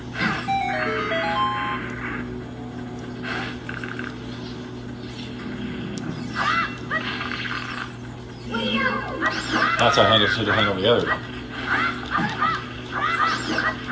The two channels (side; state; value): both; identical; correlation 1.00